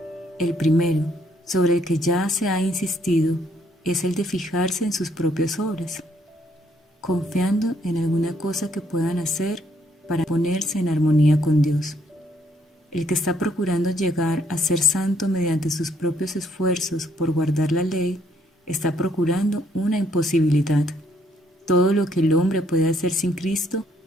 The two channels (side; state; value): both; normal; correlation 0.69